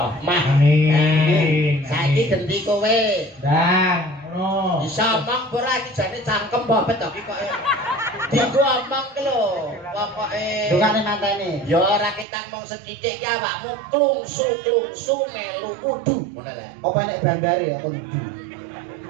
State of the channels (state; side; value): drops out; left; at 12.2 s